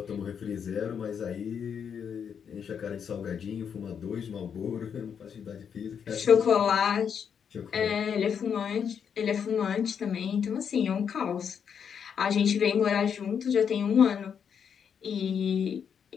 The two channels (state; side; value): quieter; right; 7.4 dB